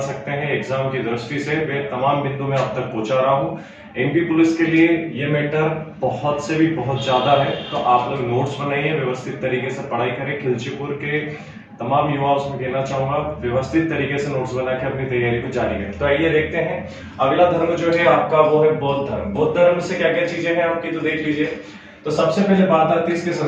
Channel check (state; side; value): identical; both; correlation 1.00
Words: सकते हैं एग्जाम की दृष्टि से, वे तमाम बिंदु मैं आप तक पहुंचा रहा हूँ। एमपी पुलिस के लिए ये मैटर बहुत से भी बहुत ज्यादा है, तो आप लोग नोट्स बनाइए, व्यवस्थित तरीके से पढ़ाई करें। खिलचीपुर के तमाम युवाओं से कहना चाहूंगा व्यवस्थित तरीके से नोट्स बना के अपनी तैयारी को जारी करें। तो आइए देखते हैं अगला धर्म जो है आपका वो है बौद्ध धर्म। बौद्ध धर्म से क्या क्या चीजें हैं आपकी, तो देख लीजिए। तो सबसे पहले बात आती है इसके